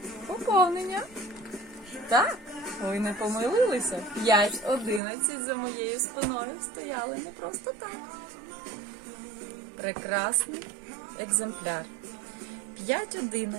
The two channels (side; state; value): left; drops out; at 5.0 s